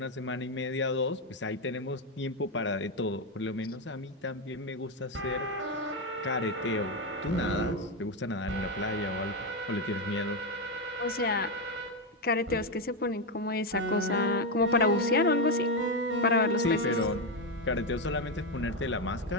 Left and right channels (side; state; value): both; normal; correlation 0.07